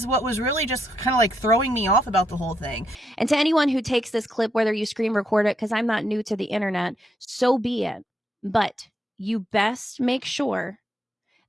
what was really just kind of like throwing me off about the whole thing. And to anyone who takes this clip, whether you screen record it, because I'm not new to the internet, so be it. But you best make sure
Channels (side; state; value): both; normal; correlation 0.78